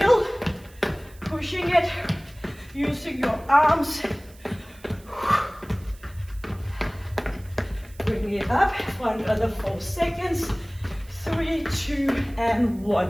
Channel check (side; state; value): right; noise; hiss, 25 dB below the sound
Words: pushing it, using your arms. Bring it up for another 4 seconds. 3, 2, and